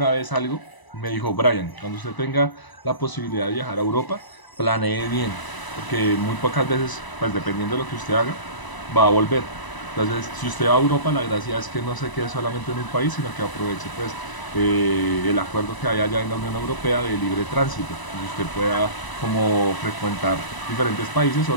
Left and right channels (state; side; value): late; right; 1.0 ms